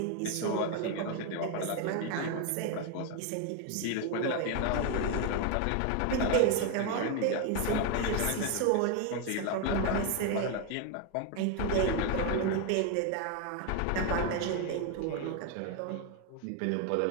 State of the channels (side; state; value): both; different; correlation 0.01